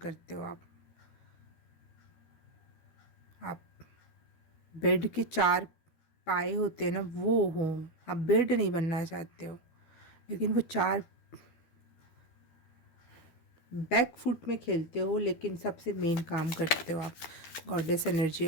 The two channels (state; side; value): late; right; 12 ms